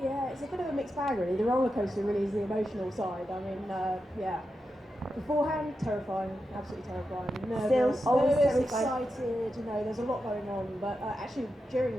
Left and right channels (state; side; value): normal; both; correlation 0.89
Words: Yeah, it's a bit of a mixed bag really. The roller coaster really is the emotional side. I mean, yeah. Beforehand, terrifying, absolutely terrifying. Nervous, excited, you know, there's a lot going on. But actually, during